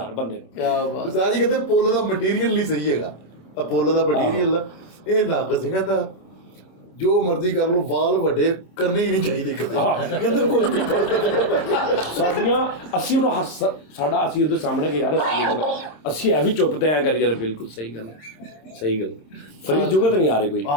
ਬੰਦੇ ਨੂੰ। ਕਿਆ ਬਾਤ। ਉਸਤਾਦ ਜੀ ਕਹਿੰਦੇ ਪੁੱਲ ਦਾ ਮਟੀਰੀਅਲ ਨਹੀਂ ਸਹੀ ਹੈਗਾ, ਆ ਪੁੱਲ ਦਾ ਮਟੀਰੀਅਲ ਇਹ ਨੱਕ ਸੀ, ਕਹਿੰਦਾ ਜੋ ਮਰਜ਼ੀ ਕਰ ਲਓ, ਵਾਲ ਵੱਡੇ ਕਰਨੇ ਹੀ ਨਹੀਂ ਚਾਹੀਦੇ ਕਿਤੇ, ਕਹਿੰਦਾ ਕੋਈ ਵੀ ਸਾਡੀਆਂ ਅਸੀਂ ਉਹਨੂੰ ਸਾਡਾ ਅਸੀਂ ਉਹਦੇ ਸਾਹਮਣੇ ਕਿ ਯਾਰ ਅਸੀਂ ਇਹ ਵੀ ਚੁੱਪ ਤੇ ਐ ਕਰੀ ਜਾਂਦੇ। ਬਿਲਕੁਲ ਸਹੀ ਗੱਲ ਹੈ, ਸਹੀ ਗੱਲ। ਫਰੀਦ ਜੁਗਤ ਨਹੀਂ ਆ ਰਹੀ ਕੋਈ।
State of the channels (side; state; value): right; late; 26 ms